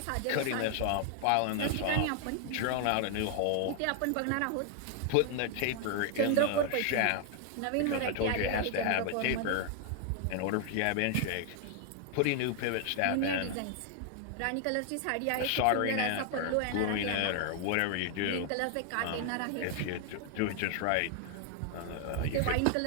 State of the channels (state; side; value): different; both; correlation 0.00